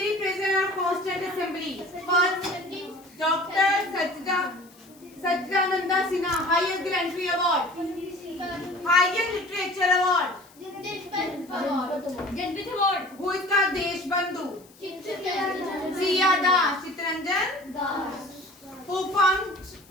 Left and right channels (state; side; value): noise; left; hiss, 27 dB below the sound